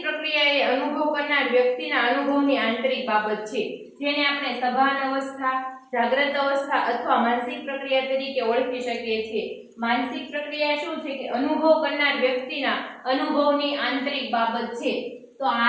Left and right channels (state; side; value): identical; both; correlation 1.00